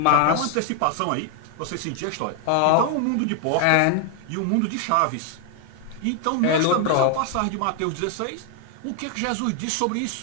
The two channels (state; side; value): different; both; correlation 0.00